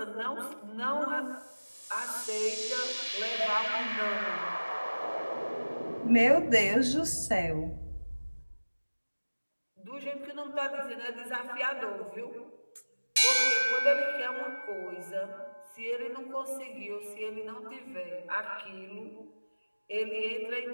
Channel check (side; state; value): both; inverted; correlation -1.00